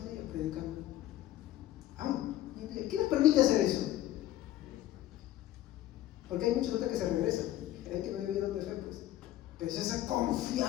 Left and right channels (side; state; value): right; quieter; 13.9 dB